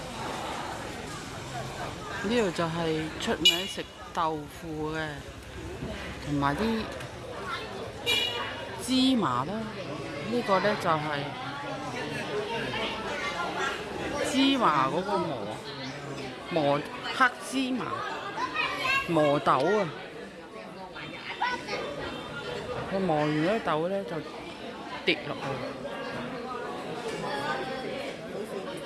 呢度就係出名食豆腐嘅，同埋啲芝麻啦。呢個呢就係芝麻嗰個磨黑芝麻磨豆啊！佢磨完嗰啲豆呢，就跌落去。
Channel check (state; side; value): identical; both; correlation 1.00